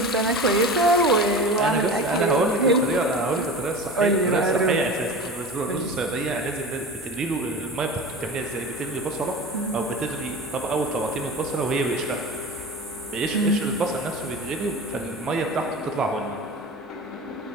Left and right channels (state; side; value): normal; both; correlation 0.32